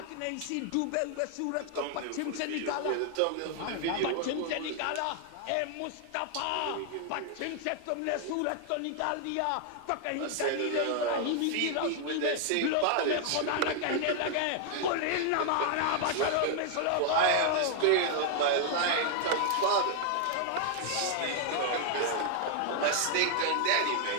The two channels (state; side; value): different; both; correlation 0.00